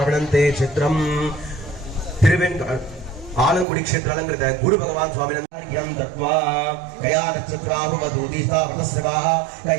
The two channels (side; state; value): left; drops out; at 3.7 s